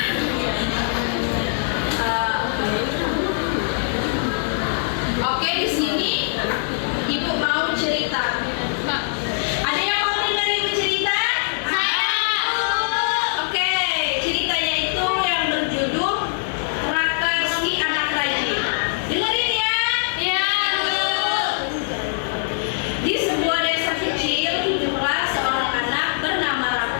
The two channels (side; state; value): right; silent; digital silence